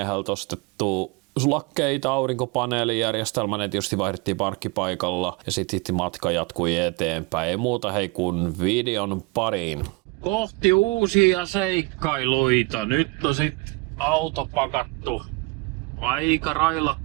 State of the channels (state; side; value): quieter; left; 25.6 dB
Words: ostettu sulakkeita, aurinkopaneelijärjestelmä, ne tietysti vaihdettiin parkkipaikalla ja sitten matka jatkui eteenpäin. Ei muuta hei kun videon pariin. Kohti uusia seikkailuita. Nyt on sit auto pakattu aika